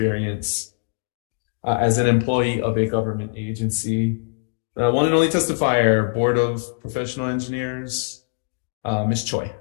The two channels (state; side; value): silent; right; digital silence